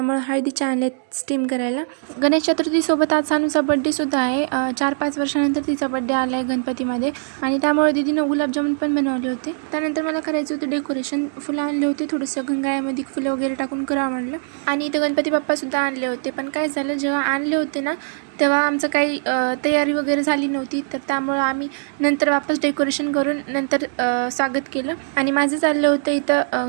हळदीच्या आणलेत स्टीम करायला. गणेश चतुर्थी सोबत आज सानूचा बड्डे सुद्धा आहे. 4-5 वर्षानंतर तिचा बड्डे आलाय गणपतीमध्ये आणि त्यामुळे दीदीनं गुलाबजामुन पण बनवले होते. त्यानंतर मला करायचं होतं डेकोरेशन. फुलं आणले होते, थोडंसं गंगाळ्यामध्ये फुलं वगैरे टाकून करावं म्हणलं. आणि इथं गणपती बाप्पा सुद्धा आणले होते. पण काय झालं, जेव्हा आणले होते ना तेव्हा आमचं काही तयारी वगैरे झाली नव्हती, तर त्यामुळं आम्ही नंतर वापस डेकोरेशन करून नंतर स्वागत केलं. आणि माझं चाललं होतं इथं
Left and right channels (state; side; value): silent; left; 65 dB below the other